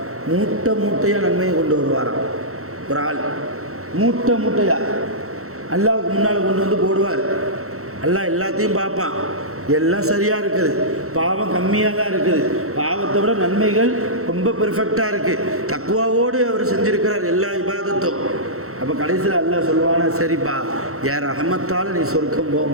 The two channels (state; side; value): late; left; 0.64 ms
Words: மூட்டை மூட்டையாக நன்மையை கொண்டு வருவாராம். ஒரு ஆள் மூட்டை மூட்டையாக அல்லாஹ்வுக்கு முன்னால் கொண்டு வந்து போடுவார். அல்லாஹ் எல்லாத்தையும் பார்ப்பான், எல்லாம் சரியாக இருக்குது, பாவம் கம்மியாக தான் இருக்குது, பாவத்தை விட நன்மைகள் ரொம்ப பெர்ஃபெக்டாக இருக்குது, தக்வாவோடு அவர் செஞ்சுருக்கிறார் எல்லா இபாதத்தும். அப்போ கடைசியில் அல்லாஹ் சொல்லுவானா, சரிப்பா யார் ரஹமத்தால் நீ சொர்க்கம்